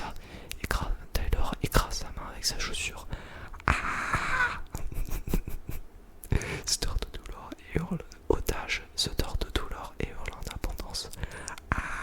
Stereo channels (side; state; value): both; identical; correlation 1.00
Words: Taylor écrase sa main avec sa chaussure. Ah se tord de douleur et hurle. Otage se tord de douleur et hurle en abondance.